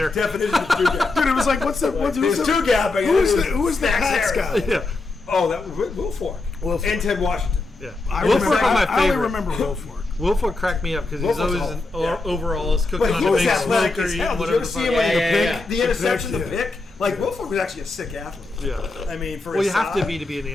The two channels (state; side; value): quieter; right; 3.3 dB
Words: Definition of two gap. Dude, it was like, what's the? It Who's was the? two gap. Who's the Pats Snacks Harrison. guy? Yeah. Oh, that was Wilfork. Wilfork. And Ted Washington. Yeah. I Wilfork remember- was my I only favorite. remember Wilfork. Wilfork cracked me up because he's Wilfork's always awful. Yeah. overalls cooking But on he a was big athletic smoker as eating hell. Did you whatever ever the see fuck. him like Yeah, the yeah, pick, yeah. the interception, The the pick, pick? Like Wilfork was actually a sick athlete. Yeah. I mean, for Well, his you have to size. be in the